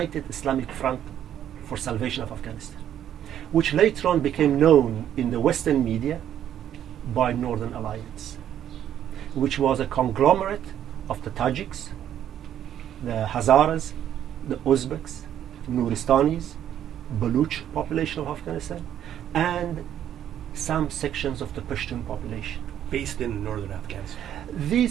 Islamic Front for Salvation of Afghanistan, which later on became known in the Western media by Northern Alliance, which was a conglomerate of the Tajiks, the Hazaras, the Uzbeks, Nuristanis, Baluch population of Afghanistan, and some sections of the Pashtun population. Based in northern Afghanistan.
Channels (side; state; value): left; quieter; 10.5 dB